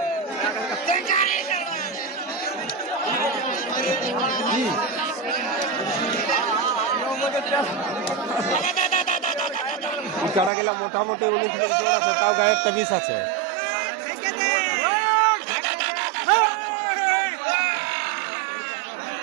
কাটা গেলা মোটামুটি 19 মিনিট জোর আছে, তাও গায়ে একটা 20 আছে।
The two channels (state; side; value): drops out; left; at 10.5 s